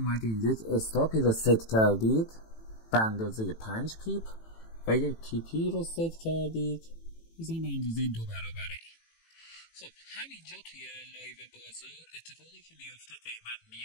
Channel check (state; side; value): late; right; 18 ms